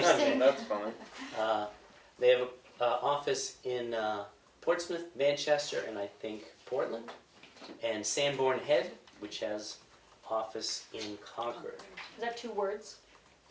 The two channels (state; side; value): identical; both; correlation 1.00